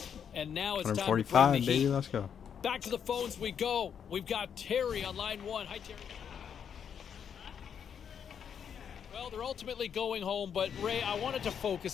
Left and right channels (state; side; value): quieter; right; 7.8 dB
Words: And now it's time to bring the heat. Baby, let's go. Back to the phones we go. We've got Terry on line 1. Hi, Terry. Well, they're ultimately going home, but Ray, I wanted to